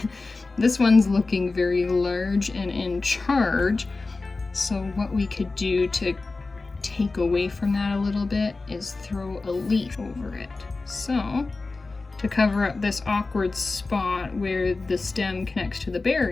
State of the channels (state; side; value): quieter; right; 3.6 dB